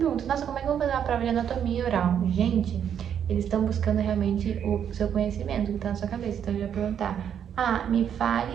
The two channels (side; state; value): left; quieter; 8.8 dB